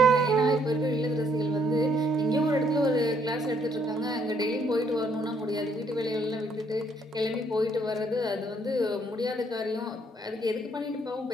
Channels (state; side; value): normal; both; correlation 0.68